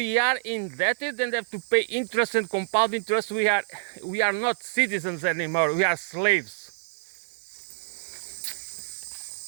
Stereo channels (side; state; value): left; silent; digital silence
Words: are indebted and have to pay interest and compound interest, we are not citizens anymore, we are slaves.